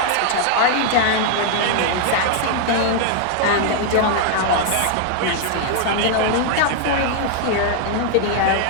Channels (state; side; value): different; both; correlation 0.00